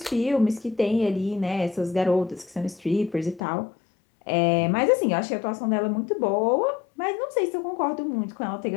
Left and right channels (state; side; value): drops out; right; at 3.4 s